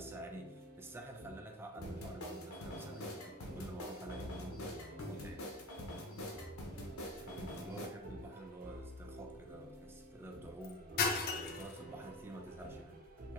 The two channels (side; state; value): both; normal; correlation 0.29